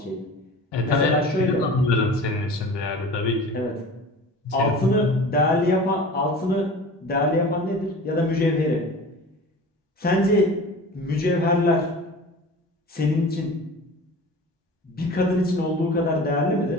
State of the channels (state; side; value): normal; both; correlation 0.38